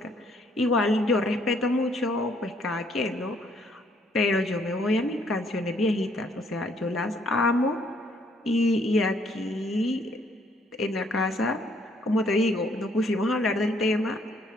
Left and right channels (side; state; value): both; normal; correlation 0.66